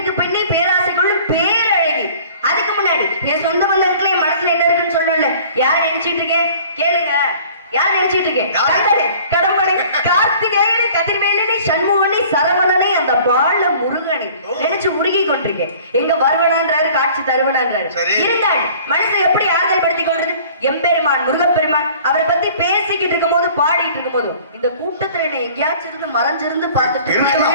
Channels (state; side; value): inverted; both; correlation -0.49